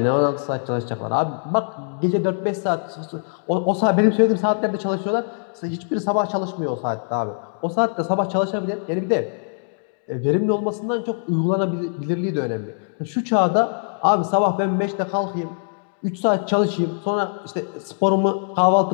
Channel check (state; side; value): silent; right; digital silence